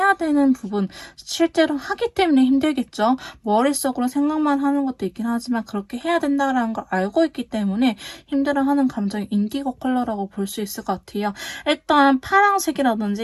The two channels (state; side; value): identical; both; correlation 1.00